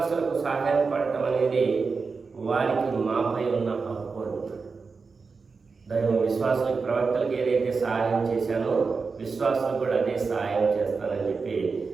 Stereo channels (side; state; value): left; quieter; 4.7 dB